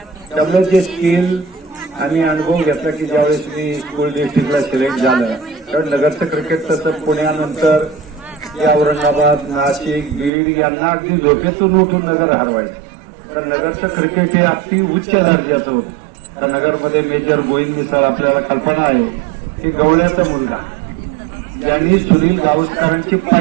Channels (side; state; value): left; drops out; at 10.3 s